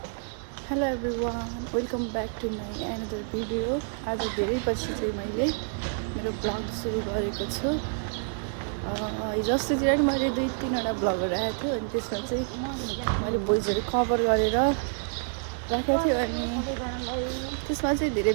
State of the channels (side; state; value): left; silent; digital silence